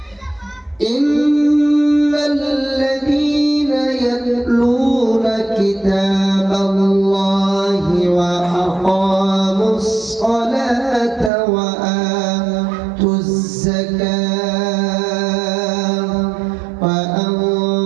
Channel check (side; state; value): left; drops out; at 11.3 s